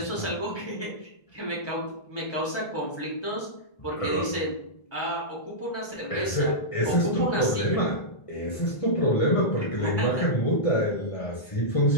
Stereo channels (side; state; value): right; late; 1.3 ms